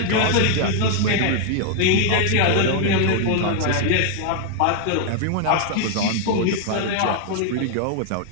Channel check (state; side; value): different; both; correlation 0.00